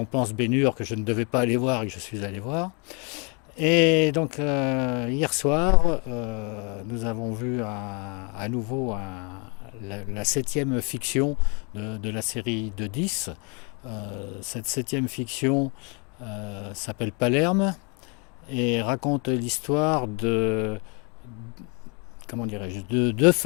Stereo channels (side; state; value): right; quieter; 33.9 dB